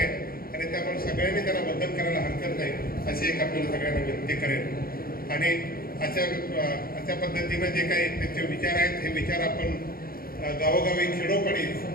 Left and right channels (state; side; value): late; right; 0.43 ms